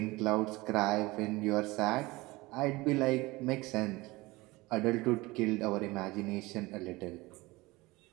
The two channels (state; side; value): quieter; left; 21.5 dB